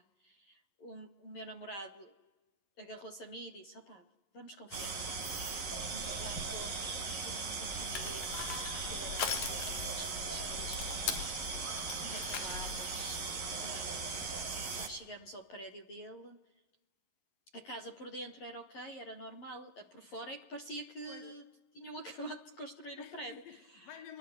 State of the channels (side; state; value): right; late; 11 ms